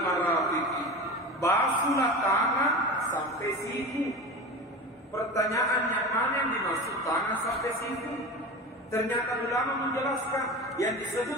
marafiqi. Basuhlah tangan sampai siku. Pertanyaannya, mana yang dimaksud tangan sampai siku? Ternyata ulama menjelaskan yang disebut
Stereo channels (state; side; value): normal; both; correlation 0.29